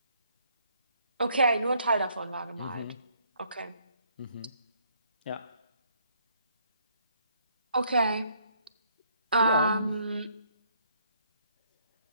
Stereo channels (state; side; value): inverted; both; correlation -0.67